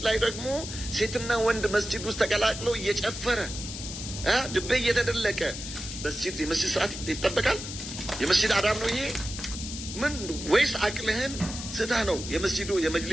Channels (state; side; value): noise; left; hiss, 8 dB below the sound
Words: ላይ ደግሞ ሴትና ወንድ መስጂድ ውስጥ ተቀላቅለው እየጨፈረ ድቤ እየተደለቀ የመስጂድ ስርዓት ይጠበቃል? የመስጂድ አዳብ ነው ይሄ? ምን ወይስ አቅልህን ስተህ ነው የመስጂዱ